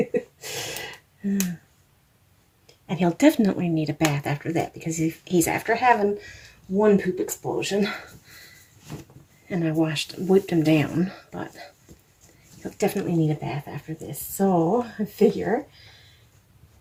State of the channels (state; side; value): identical; both; correlation 1.00